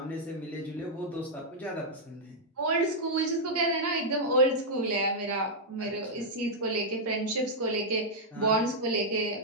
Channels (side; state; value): both; normal; correlation -0.05